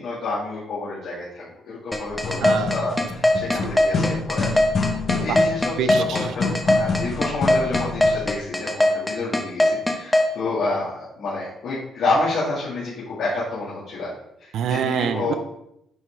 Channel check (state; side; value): normal; both; correlation 0.83